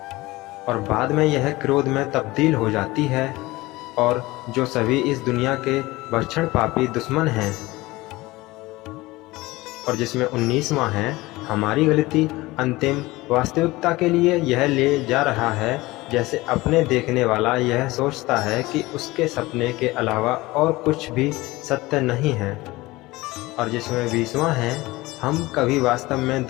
और बाद में यह क्रोध में तब्दील हो जाती है, और जो सभी इस दुनिया के भक्षण पापी दुश्मन हैं। और जिसमें 19वां है, हमारी गलती अंतिम वास्तविकता के लिए यह ले जा रहा है, जैसे अपने देखने वाला यह सोचता है कि उसके सपने के अलावा और कुछ भी सत्य नहीं है। और जिसमें 20वां है, हम कभी वास्तव में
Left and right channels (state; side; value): quieter; right; 20.2 dB